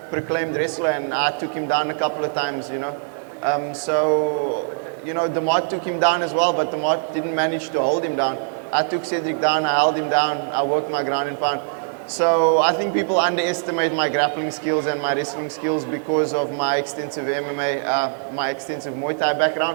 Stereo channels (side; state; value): left; silent; digital silence